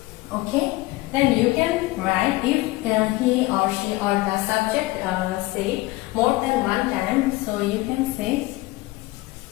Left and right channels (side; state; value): right; quieter; 20.1 dB